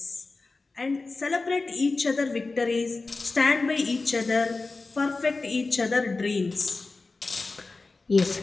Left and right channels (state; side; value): quieter; right; 3.7 dB